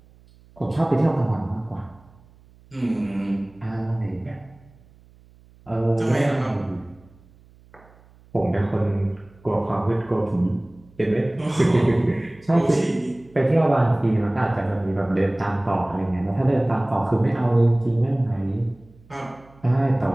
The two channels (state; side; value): noise; right; hum, 27 dB below the sound